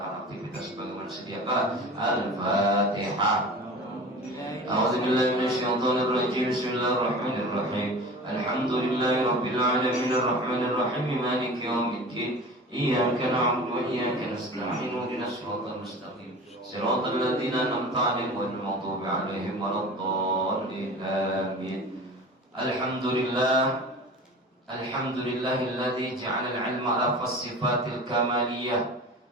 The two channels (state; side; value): normal; both; correlation 0.37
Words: aktivitas sebagaimana sedia kala. Al-Fatihah. A'udzu billahi minasyaitonir rajim. Bismillahirrahmanirrahim. Alhamdulillahi rabbil alamin arrahmanir rahim maliki yaumiddin. Iyyaka na'budu wa iyyaka nasta'in ihdinas siratal mustaqim siratal ladzina an'amta 'alaihim ghairil maghdubi 'alaihim waladdallin amin. Alhamdulillahilladzi ja'ala al-'ilma ala as-sifatil kamaliyah